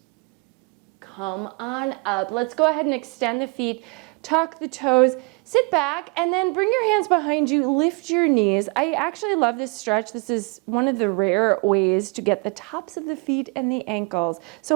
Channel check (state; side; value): quieter; left; 31.1 dB